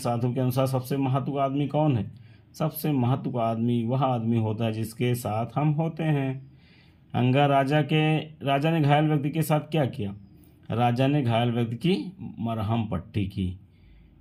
के अनुसार सबसे महत्व का आदमी कौन है। सबसे महत्व का आदमी वह आदमी होता है जिसके साथ हम होते हैं। अंगा, राजा ने घायल व्यक्ति के साथ क्या किया। राजा ने घायल व्यक्ति की मरहम पट्टी की।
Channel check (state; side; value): identical; both; correlation 1.00